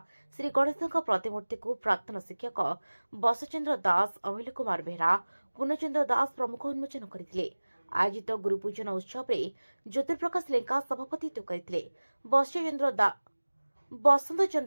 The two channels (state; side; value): inverted; both; correlation -1.00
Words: ଶ୍ରୀ ଗଣେଶଙ୍କ ପ୍ରତିମୂର୍ତ୍ତିକୁ ପ୍ରାକ୍ତନ ଶିକ୍ଷକ ବସଚନ୍ଦ୍ର ଦାସ, ଅମିଲ କୁମାର ବେହେରା, ପୂର୍ଣ୍ଣଚନ୍ଦ୍ର ଦାସ ପ୍ରମୁଖ ଉନ୍ମୋଚନ କରିଥିଲେ। ଆୟୋଜିତ ଗୁରୁପୂଜନ ଉତ୍ସବରେ ଜ୍ୟୋତିପ୍ରକାଶ ଲେଙ୍କା ସଭାପତିତ୍ୱ କରିଥିଲେ। ବସନ୍ତ